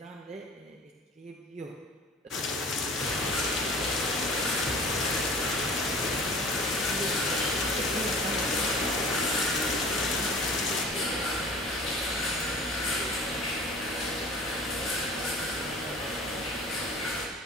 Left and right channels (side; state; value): both; normal; correlation 0.43